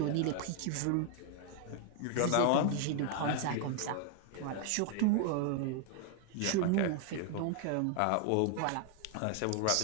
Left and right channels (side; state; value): both; different; correlation 0.00